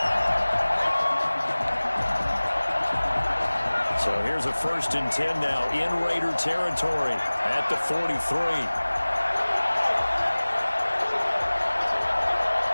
So here's a 1st and 10 now in Raider territory at the 43.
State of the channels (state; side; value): inverted; both; correlation -1.00